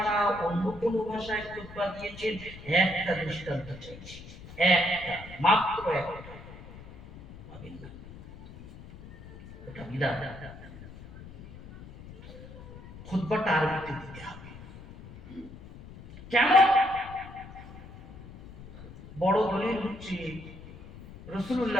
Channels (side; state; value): left; noise; rumble, 16 dB below the sound